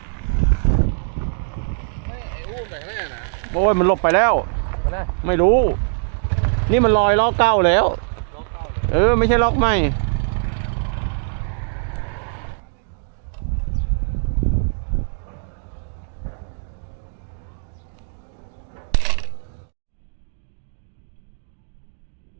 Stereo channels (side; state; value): left; silent; digital silence